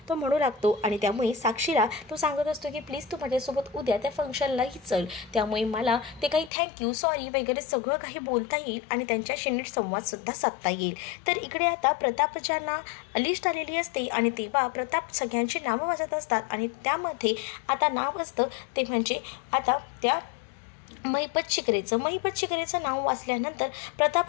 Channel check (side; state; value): right; drops out; at 6.5 s